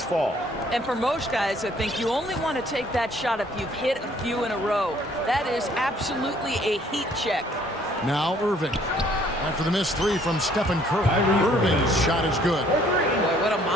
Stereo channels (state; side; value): normal; both; correlation 0.61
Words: fall. And for most guys, I think you only want to take that shot if you've hit a few in a row. That is absolutely a heat check. Now Irving. After the missed three from Stephen Curry. Irving's shot is good. Boy, what a